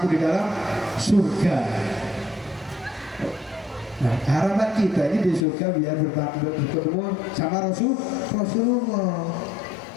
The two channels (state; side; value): drops out; right; at 5.5 s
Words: di dalam surga. Nah, harapan kita ini di surga biar bertemu sama Rasulullah.